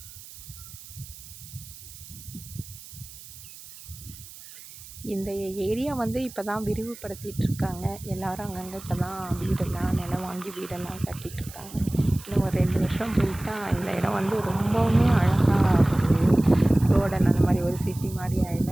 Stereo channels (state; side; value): noise; right; hiss, 17 dB below the sound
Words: இந்த ஏரியா இப்போ தான் விரிவுபடுத்திட்டு இருக்காங்க. எல்லாரும் அங்கங்கே இப்போ தான் நிலம் வாங்கி வீடெல்லாம் கட்டிகிட்டு இருக்காங்க. இன்னும் ஒரு 2 வருஷம் போயிட்டா இந்த இடம் ரொம்பவுமே அழகாக ரோடன் அந்த மாதிரி ஒரு சிட்டி மாதிரி